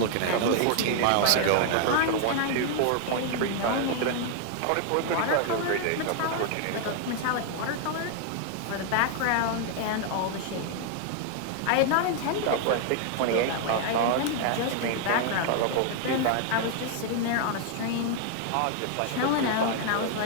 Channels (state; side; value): different; both; correlation 0.00